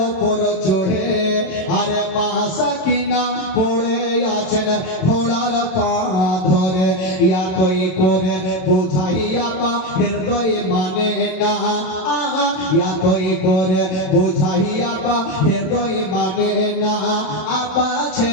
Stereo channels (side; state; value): right; late; 27 ms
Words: ওপর চড়ে, আরে মা সাকিনা পড়ে আছেন ঘোড়ার পা ধরে। ইয়াতই করে বোঝাইয়া বা হৃদয় মানে না, ইয়াতই করে বোঝাইয়া বা হৃদয় মানে না। আপা